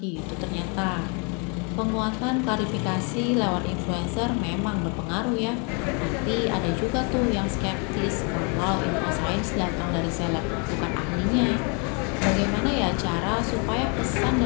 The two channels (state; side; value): quieter; right; 35.5 dB